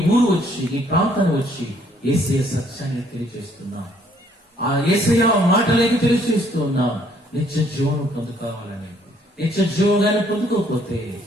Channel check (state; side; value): normal; both; correlation 0.64